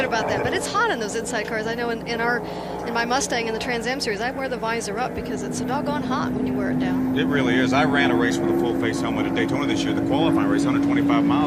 about that, but it's hot in those inside cars. I know in my Mustang in the Trans Am series, I wear the visor up because it's so doggone hot when you wear it down. It really is. I ran a race with a full face helmet at Daytona this year, the qualifying race, 125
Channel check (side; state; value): both; identical; correlation 1.00